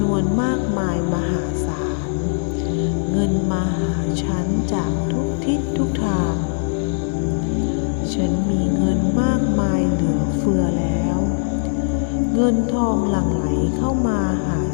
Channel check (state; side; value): silent; right; digital silence